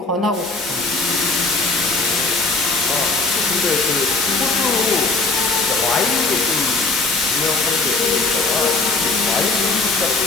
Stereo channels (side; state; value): right; quieter; 3.4 dB